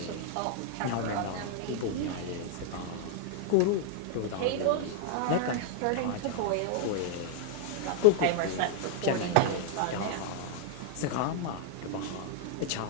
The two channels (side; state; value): both; different; correlation 0.00